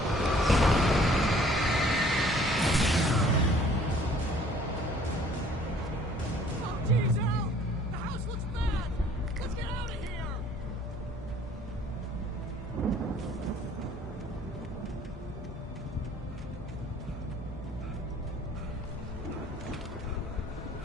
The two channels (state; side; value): normal; both; correlation 0.56